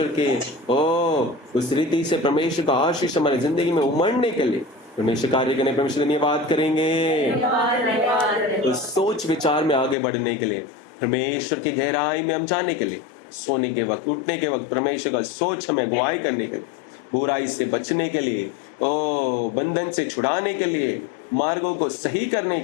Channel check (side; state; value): right; drops out; at 10.0 s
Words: के उस रीति से परमेश्वर का आशीष हमारी जिंदगी में उमड़ने के लिए परमेश्वर कार्य करने परमेश्वर धन्यवाद करेंगे। उस सोच विचार में आगे बढ़ने के लिए, परमेश्वर की गहराई में हम जाने के लिए, सोने के वक्त उठने के वक्त परमेश्वर का सोच हमें अगुवाई करने के लिए, बुराई से बचने के लिए, बंधन से छुड़ाने के लिए, मार्गों को सही करने